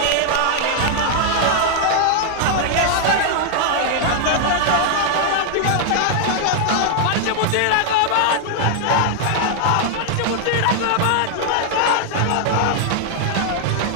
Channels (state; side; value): different; both; correlation 0.00